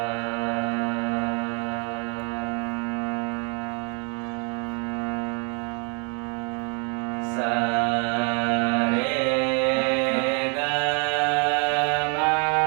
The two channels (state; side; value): quieter; left; 34.9 dB